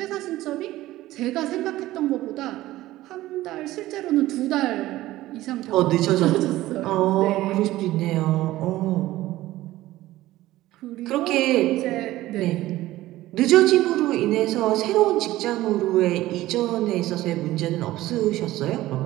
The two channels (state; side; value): quieter; left; 16.2 dB